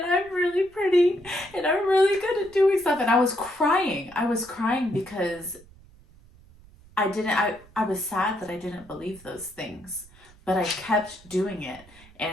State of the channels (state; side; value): noise; right; rumble, 25 dB below the sound